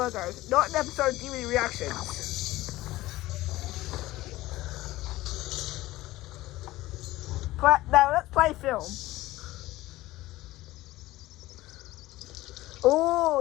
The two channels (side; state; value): right; quieter; 17.4 dB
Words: not an episode of DVD reactions. But now let's play film.